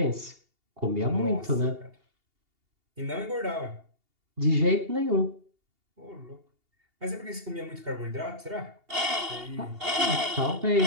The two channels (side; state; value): left; late; 2.8 ms